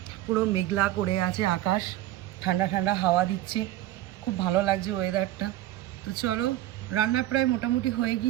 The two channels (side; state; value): left; quieter; 14.5 dB